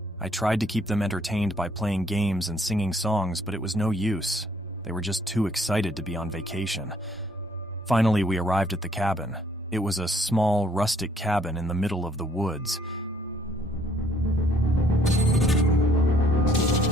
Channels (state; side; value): normal; both; correlation 0.64